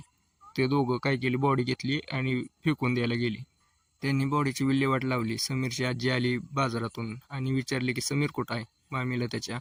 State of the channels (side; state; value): both; identical; correlation 1.00